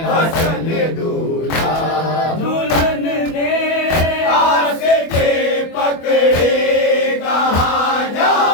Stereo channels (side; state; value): right; late; 25 ms